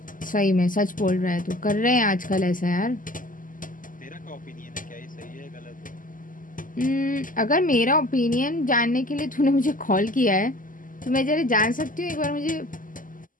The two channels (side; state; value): right; late; 0.39 ms